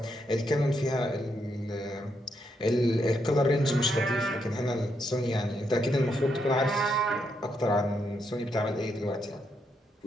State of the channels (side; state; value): both; normal; correlation 0.79